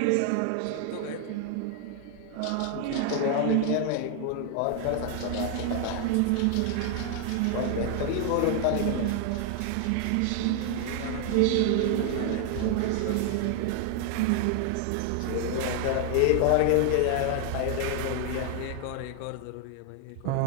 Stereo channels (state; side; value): different; both; correlation 0.00